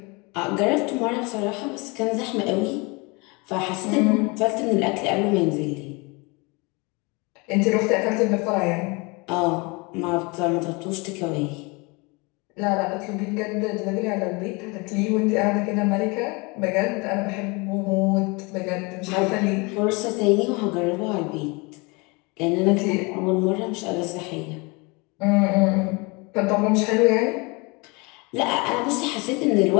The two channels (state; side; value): quieter; right; 27.9 dB